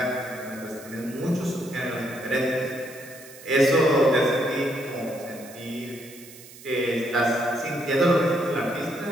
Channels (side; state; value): right; noise; hiss, 19 dB below the sound